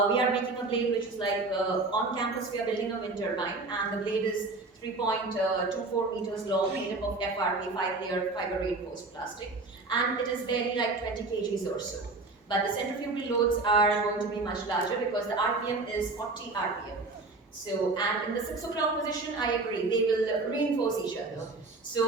We are making a blade which is like on campus we are building a wind turbine, and the blade is 3.24 meters long, made up of FRP, 5-layer fiber reinforced plastic, and it is barely like 20 kgs or so. But the centrifugal loads are going to be much larger because the RPM is 40 RPM. So, and in the 6 o'clock position, I agree, they will reinforce each other.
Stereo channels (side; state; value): left; quieter; 3.4 dB